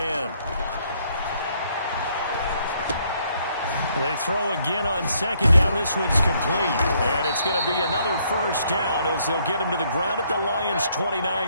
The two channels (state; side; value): inverted; both; correlation -0.69